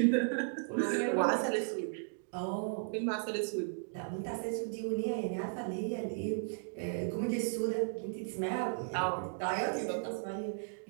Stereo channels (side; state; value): left; silent; digital silence